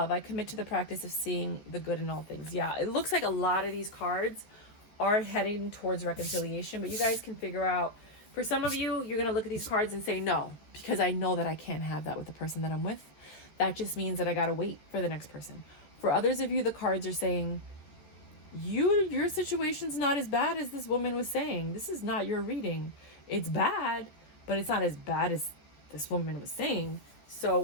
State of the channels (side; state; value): right; late; 14 ms